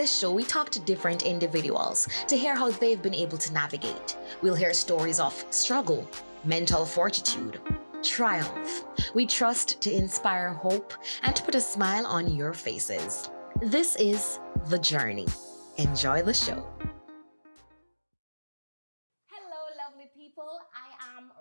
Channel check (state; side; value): inverted; both; correlation -1.00